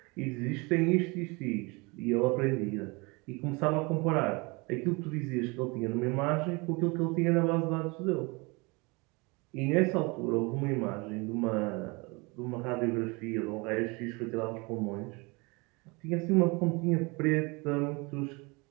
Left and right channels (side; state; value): left; quieter; 27.5 dB